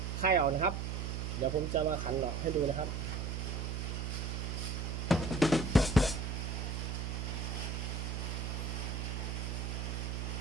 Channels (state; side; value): noise; right; hum, 2 dB below the sound